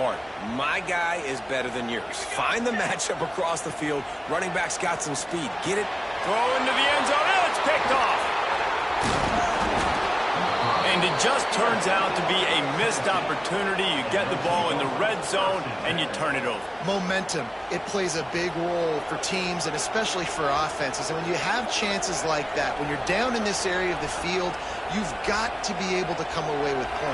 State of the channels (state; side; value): identical; both; correlation 1.00